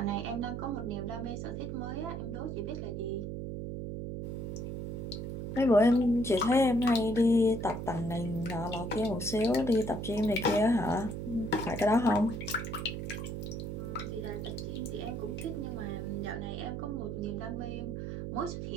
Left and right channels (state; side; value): noise; right; hum, 5 dB below the sound